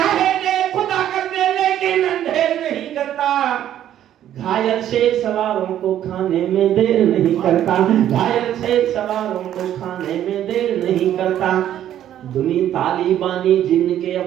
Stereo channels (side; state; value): left; quieter; 11.3 dB